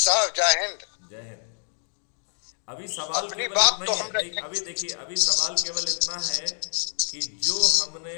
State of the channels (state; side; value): silent; right; digital silence